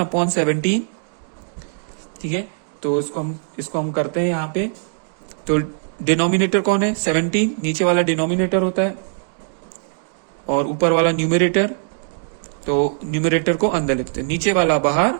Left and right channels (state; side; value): silent; left; digital silence